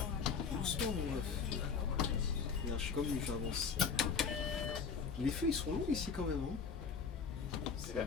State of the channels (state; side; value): quieter; right; 5.9 dB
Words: Doucement, mon meuf. Regarde, je suis comme lui, j'avance. Les feux, ils sont longs ici quand même. Hein. C'est vrai.